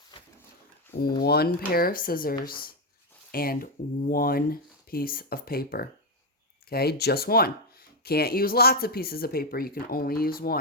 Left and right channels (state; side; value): normal; both; correlation 0.05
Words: one pair of scissors, and one piece of paper. Okay, just one. Can't use lots of pieces of paper. You can only use